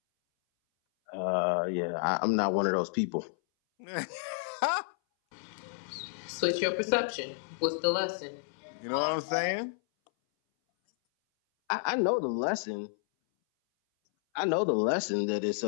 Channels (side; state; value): right; silent; 57 dB below the other